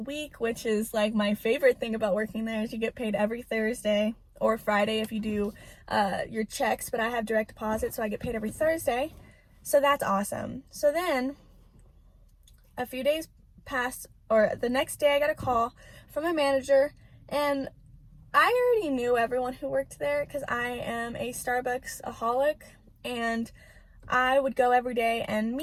week, which is like my favorite thing about working there, is you get paid every Thursday or Friday if you do your checks, but I have direct deposit, so I get paid every Thursday. So that's awesome. So then a few days passed, or the next day I got a call from a manager, and I already knew everyone who worked there because I am a Starbucks-aholic, and I would go every day, and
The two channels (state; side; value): identical; both; correlation 1.00